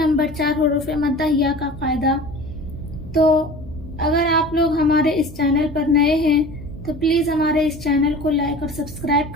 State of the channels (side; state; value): left; noise; hum, 17 dB below the sound